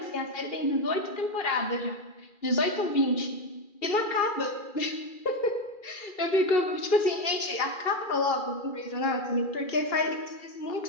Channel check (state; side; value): late; right; 2.4 ms